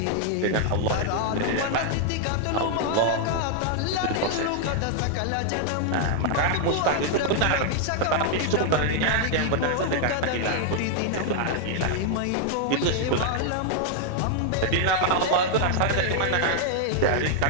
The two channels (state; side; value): different; both; correlation 0.00